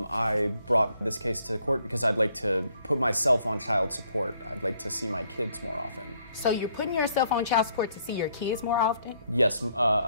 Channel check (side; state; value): both; inverted; correlation -0.69